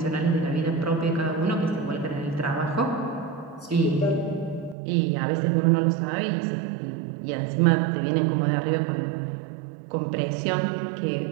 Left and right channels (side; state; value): left; drops out; at 4.8 s